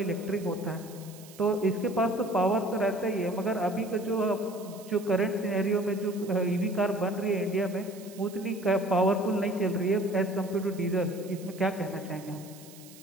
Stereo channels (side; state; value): right; noise; hiss, 20 dB below the sound